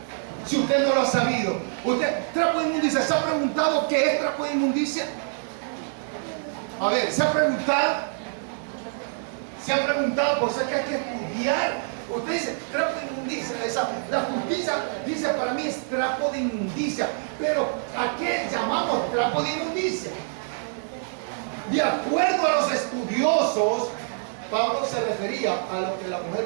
Si usted no lo ha sabido. Usted, trapo de inmundicia, ¿se ha preguntado qué es trapo de inmundicia? A ver, ¿se ha preguntado? ¿Se ha preguntado? Por eso es que hay que estudiar. Usted dice, trapo de inmundicia. La justicia dice para mí es trapo de inmundicia. Pero ¿a qué llamamos trapo de inmundicia? De acuerdo a los estudiosos, Pablo se refería a lo que la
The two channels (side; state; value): left; silent; 61 dB below the other